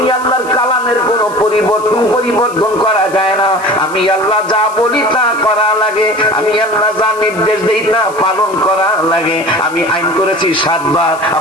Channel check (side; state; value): left; noise; hiss, 20 dB below the sound